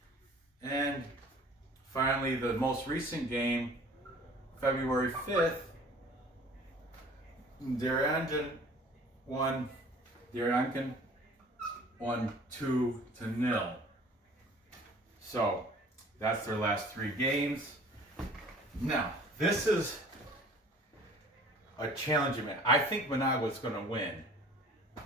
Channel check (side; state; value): both; normal; correlation 0.49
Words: And finally, the most recent game, February 5th, Nicaraguan won 2-0. So that's their last 3 games. Now, this is a challenging match. I think Managua's going to win.